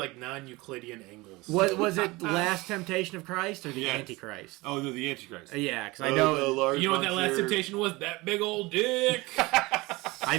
non-Euclidean angles. What was it? Last Temptation of Christ or the Yes. Antichrist? Oh, no, the Antichrist. Yeah, because I know. You know what that last temptation was? That big old dick. I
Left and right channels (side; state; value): left; quieter; 22.4 dB